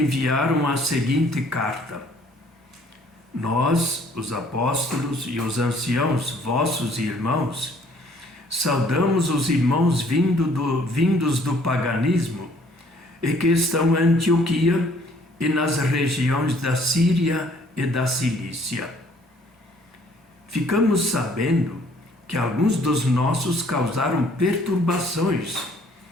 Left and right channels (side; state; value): both; normal; correlation 0.60